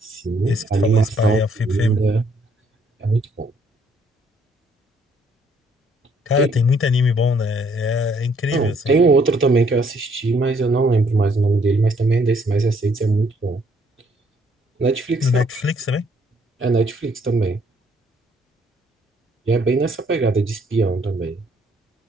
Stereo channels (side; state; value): both; normal; correlation 0.66